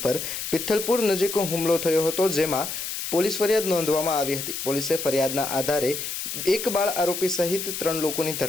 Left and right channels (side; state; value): left; noise; hiss, 5 dB below the sound